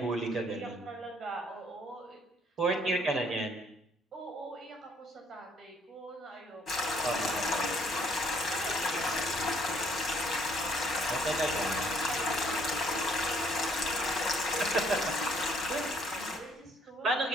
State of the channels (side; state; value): both; normal; correlation 0.65